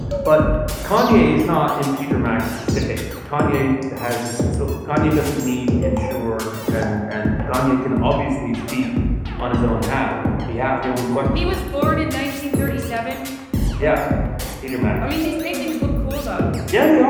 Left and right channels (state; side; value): identical; both; correlation 1.00